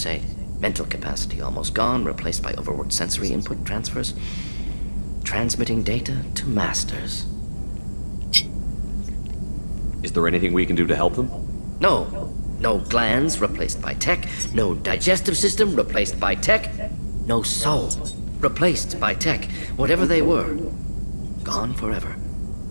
Mental capacity almost gone, replaced by overworked sensory input transfers. Transmitting data to masters. Is there anything we can do to help them? No. No glands replaced by tech. No digestive system replaced by tech. No soul replaced by tech. Whatever they were, gone forever.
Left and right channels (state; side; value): inverted; both; correlation -1.00